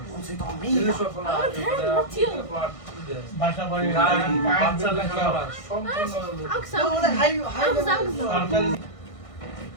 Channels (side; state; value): right; late; 1.6 ms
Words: বাসা বাড়ি গাড়ি বাচ্চা লেখাপড়া সম্পূর্ণ